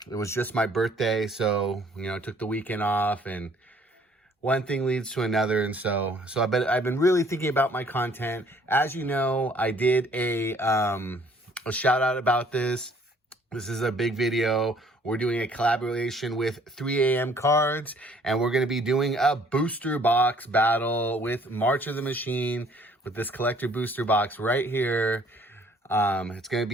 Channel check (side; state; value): both; normal; correlation 0.59